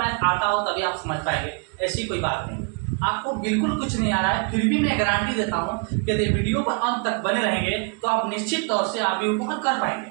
आता हो तभी आप समझ पाएंगे, ऐसी कोई बात नहीं। आपको बिल्कुल कुछ नहीं आ रहा है, फिर भी मैं गारंटी देता हूं कि यदि वीडियो पर अंत तक बने रहेंगे तो आप निश्चित तौर से आव्यूह को हल कर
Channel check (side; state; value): left; quieter; 35.6 dB